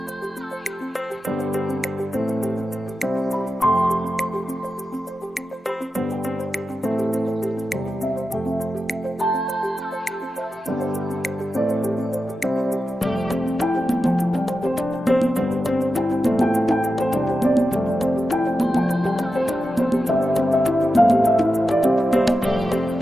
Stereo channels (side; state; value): both; normal; correlation 0.91